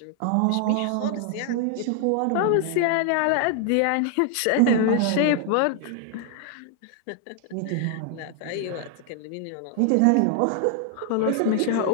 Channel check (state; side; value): different; both; correlation 0.00